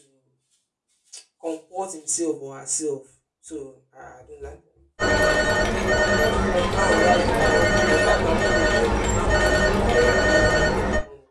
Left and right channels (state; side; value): identical; both; correlation 1.00